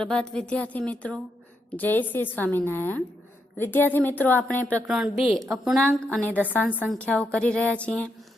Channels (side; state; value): both; normal; correlation 0.81